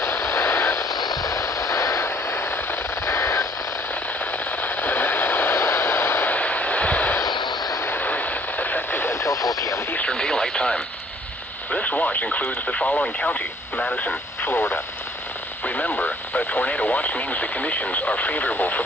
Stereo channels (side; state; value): both; normal; correlation 0.59